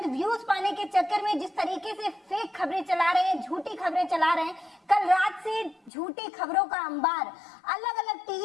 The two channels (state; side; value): drops out; right; at 5.9 s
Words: व्यूज पाने के चक्कर में जिस तरीके से फेक खबरें चला रहे हैं, झूठी खबरें चला रहे हैं। कल रात से झूठी खबरों का अंबार अलग अलग